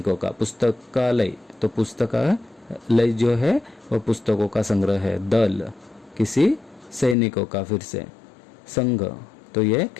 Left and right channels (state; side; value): drops out; right; at 7.2 s